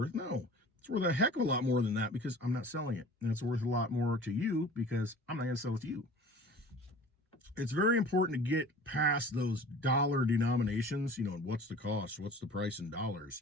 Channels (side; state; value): both; normal; correlation 0.43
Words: No, it's worth a heck of a lot more than that because I'm not selling it. And it's worth a lot more to you because I'm not going to sell it to you. It's very important to get past those dollar denominations, you know, and what's the cost, what's the price in dollars.